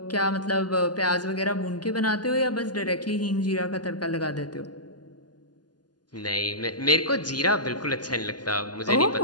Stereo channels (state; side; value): late; right; 0.70 ms